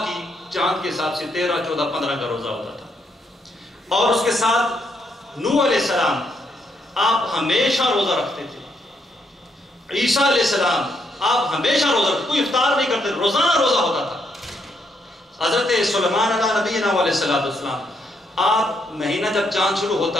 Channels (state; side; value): normal; both; correlation 0.76